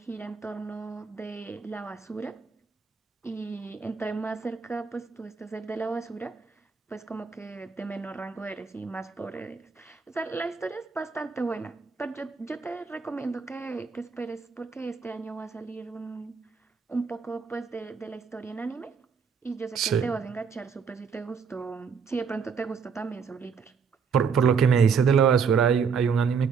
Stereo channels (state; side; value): quieter; left; 5.9 dB